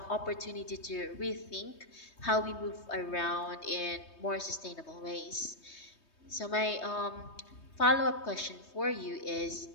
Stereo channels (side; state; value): right; late; 3.2 ms